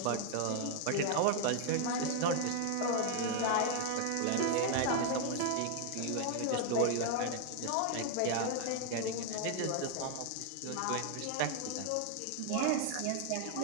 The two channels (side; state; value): both; different; correlation 0.00